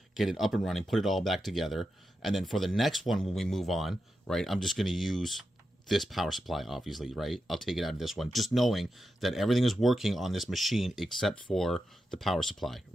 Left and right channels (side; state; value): both; normal; correlation 0.88